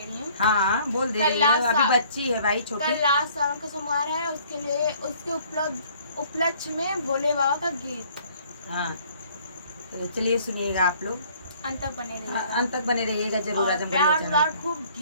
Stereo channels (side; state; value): both; inverted; correlation -0.58